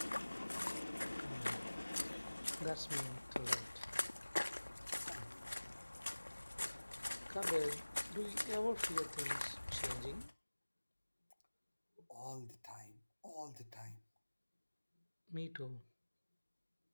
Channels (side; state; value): both; inverted; correlation -1.00